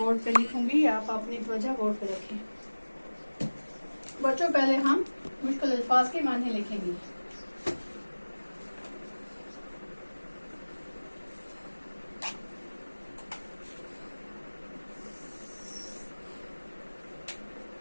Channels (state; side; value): inverted; both; correlation -1.00